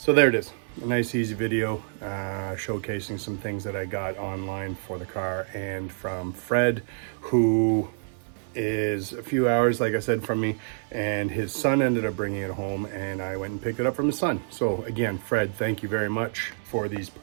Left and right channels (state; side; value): silent; left; 60 dB below the other